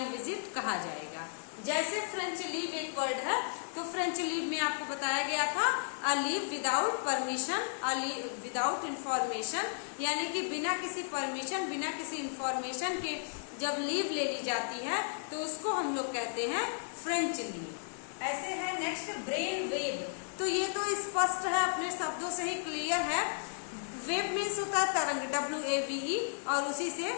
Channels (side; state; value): right; silent; 55 dB below the other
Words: विजिट कहा जाएगा। जैसे फ्रेंच लीव एक वर्ड है, तो फ्रेंच लीव में आपको बताया गया था a leave without permission, a leave without information, यानी कि बिना किसी परमिशन, बिना किसी इंफॉर्मेशन के जब लीव ले ली जाती है तो उसको हम लोग कहते हैं फ्रेंच लीव। ऐसे है नेक्स्ट ब्रेन वेव, तो ये तो स्पष्ट है, अपने शब्दों से ही क्लियर है। वेव मीन्स होता है तरंग, WAVE, और उसी से